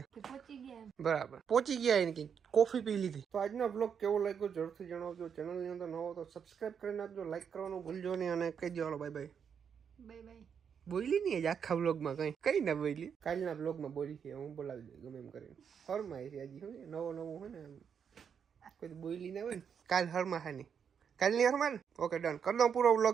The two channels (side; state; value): left; quieter; 7.3 dB